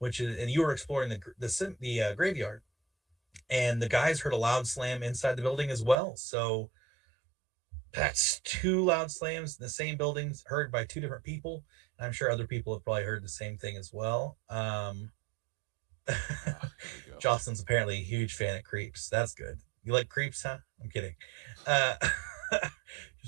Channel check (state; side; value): drops out; left; at 6.0 s